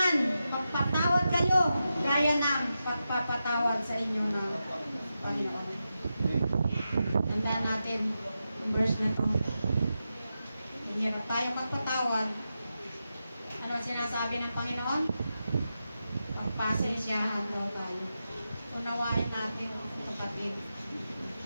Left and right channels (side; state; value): both; inverted; correlation -0.89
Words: magpatawad kayo, gaya ng pagpapatawad sa inyo ng Panginoon. Tandaan natin ang verse na to. Hirap tayo magpatawad. Ano ang sinasabi ng Panginoon? Pagpasensyahan daw tayo. Unawain natin, kapatid.